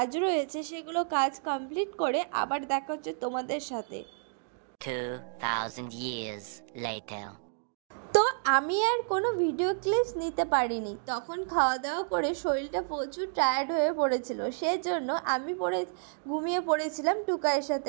রয়েছে, সেগুলো কাজ কমপ্লিট করে আবার দেখা হচ্ছে তোমাদের সাথে। 2000 years later. তো আমি আর কোনো ভিডিও ক্লিপস নিতে পারিনি, তখন খাওয়া দাওয়া করে শরীরটা প্রচুর টায়ার্ড হয়ে পড়েছিল, সেজন্য আমি ঘুমিয়ে পড়েছিলাম টুকাইয়ের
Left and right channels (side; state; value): left; silent; digital silence